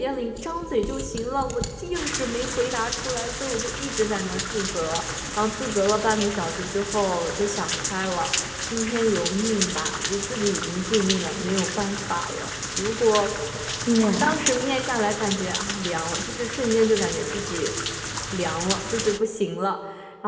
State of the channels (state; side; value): identical; both; correlation 1.00